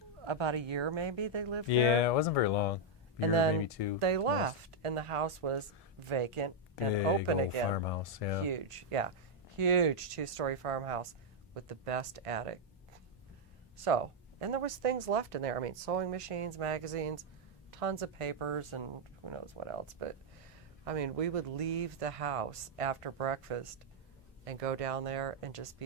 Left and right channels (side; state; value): both; normal; correlation -0.02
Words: About a year, maybe they lived there. Yeah, it wasn't very long. And Year, then maybe 2. they most. left, and the house was vacant and Big open old again. farmhouse, yeah. Huge, yeah. Huge 2-story farmhouse with the best attic. So, and there was things left in there. I mean, sewing machines, magazines, tons of papers, and who knows what else. But, I mean, we would leave the house after breakfast and go down there and just